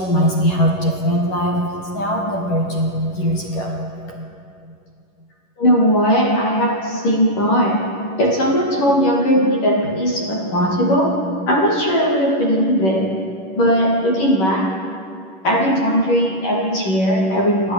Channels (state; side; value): late; right; 11 ms